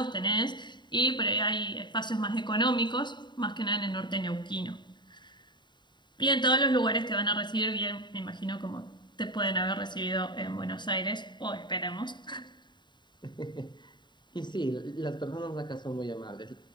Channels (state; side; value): late; right; 0.22 ms